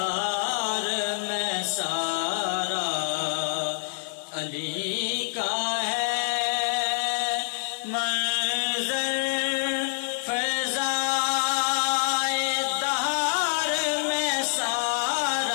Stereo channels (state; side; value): silent; right; 58 dB below the other